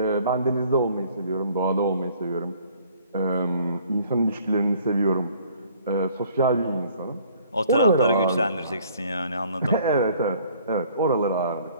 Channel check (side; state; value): both; inverted; correlation -0.57